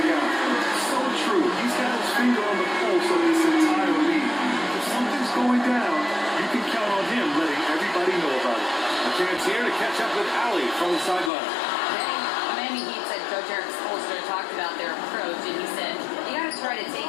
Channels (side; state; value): right; drops out; at 11.3 s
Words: guy. So true. He's got his finger on the pulse of this entire league. If something's going down, you can count on him letting everybody know about it. A chance here to catch up with Allie from the sideline. Miami Heat said Coach Eric Spoelstra talked about their approach, and he said, you got to try to take